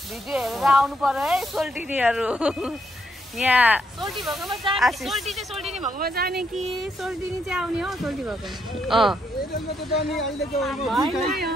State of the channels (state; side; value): normal; both; correlation 0.76